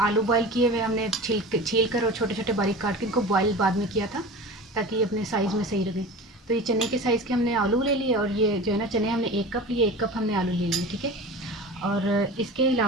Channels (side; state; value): both; normal; correlation 0.34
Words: बॉयल किए हुए हमने छील कर और छोटे छोटे बारीक काट के इनको बॉयल बाद में किया था ताकि अपने साइज़ में सही रहे। तो ये चने के साइज़ के हमने आलू ले लिए, और ये जो है ना चने हमने 1 कप लिए, 1 कप हमने आलू ले लिए, ठीक है। और इसके